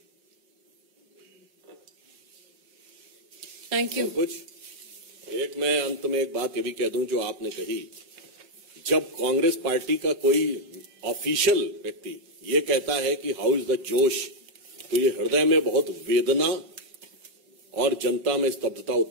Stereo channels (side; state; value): left; late; 5.6 ms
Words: Thank you. कुछ एक मैं अंत में एक बात ये भी कह दूं जो आपने कही, जब कांग्रेस पार्टी का कोई ऑफिशियल व्यक्ति ये कहता है कि हाउ इज द जोश, तो ये हृदय में बहुत वेदना और जनता में स्तब्धता